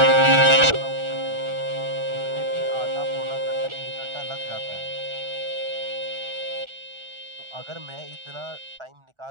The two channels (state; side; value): late; left; 1.4 ms